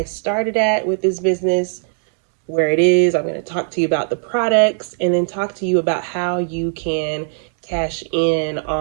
started at with this business, where it is. I'm going to talk to you about the products and then talk to you about how you can cash in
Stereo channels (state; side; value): silent; left; digital silence